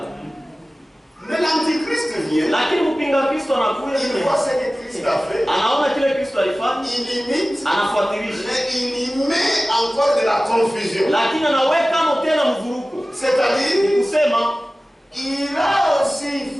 Mais l'Antichrist vient. Lakini mpinga Kristo anakuja, Il voit ce que Christ a fait. anaona kile Kristo alifanya, Il imite. anafuatilisha. Mais il y met encore de la confusion. Lakini anaweka tena mvuruko. C'est-à-dire, Kusema il a aussi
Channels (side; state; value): both; normal; correlation 0.97